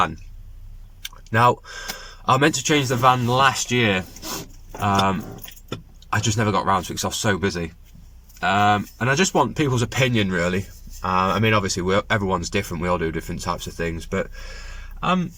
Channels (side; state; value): both; identical; correlation 1.00